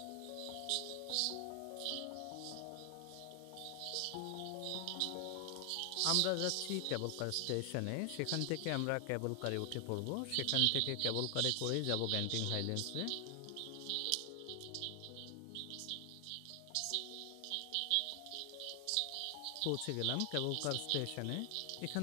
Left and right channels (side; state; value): both; different; correlation 0.00